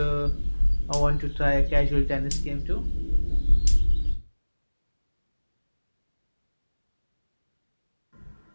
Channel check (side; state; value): both; inverted; correlation -1.00